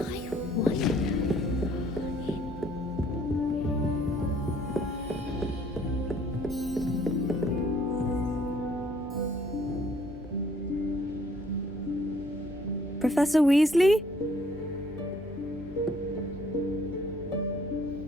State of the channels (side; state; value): both; normal; correlation 0.62